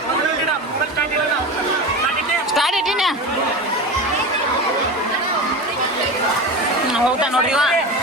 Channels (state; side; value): normal; both; correlation 0.26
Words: ಸ್ಟಾರ್ಟ್ ಇಟ್ಟಿನ ಹೋಗ್ತಾನ ನೋಡ್ರಿ ಇವ